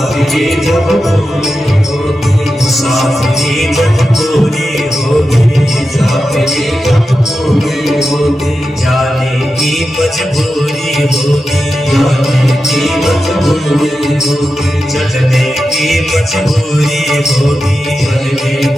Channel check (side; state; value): both; normal; correlation 0.90